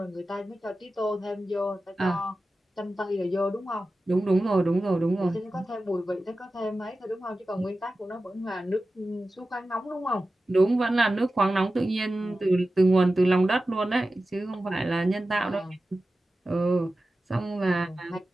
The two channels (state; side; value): normal; both; correlation 0.94